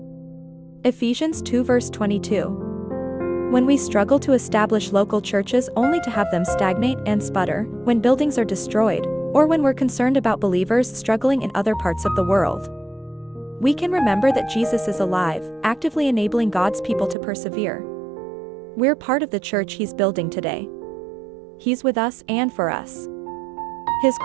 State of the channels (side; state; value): left; drops out; at 17.2 s